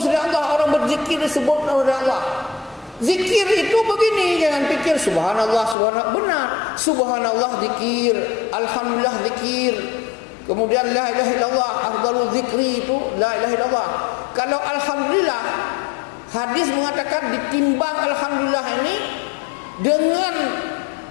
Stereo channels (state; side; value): drops out; right; at 5.8 s